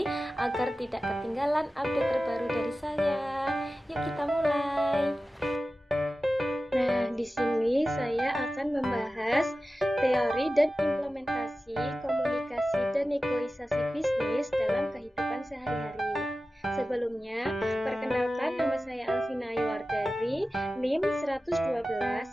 agar tidak ketinggalan update terbaru dari saya. Yuk kita mulai. Nah, di sini saya akan membahas teori dan implementasi komunikasi dan negosiasi bisnis dalam kehidupan sehari-hari. Sebelumnya, perkenalkan, nama saya Alvina Aywardari, NIM 112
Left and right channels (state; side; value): normal; both; correlation 0.95